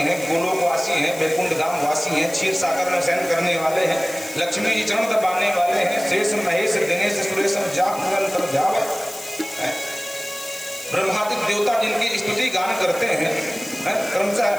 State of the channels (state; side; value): noise; left; hiss, 15 dB below the sound